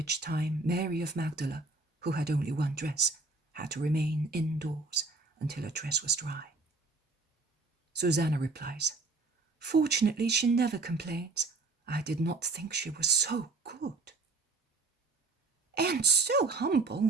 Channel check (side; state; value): left; quieter; 3.6 dB